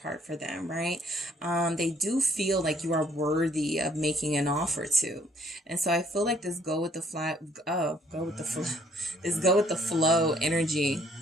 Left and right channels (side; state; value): both; normal; correlation 0.64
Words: for them, right? They do feel like you are worthy of making an offer to. And so I feel like this go with the flow energy